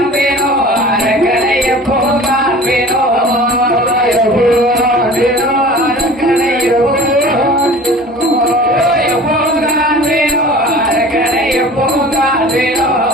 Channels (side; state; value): both; normal; correlation 0.42